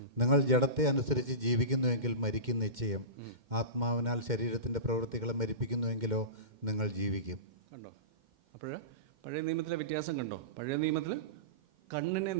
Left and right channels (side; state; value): left; late; 2.1 ms